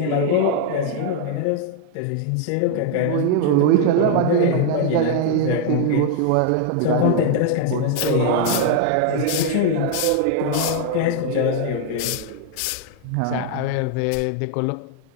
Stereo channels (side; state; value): both; different; correlation 0.00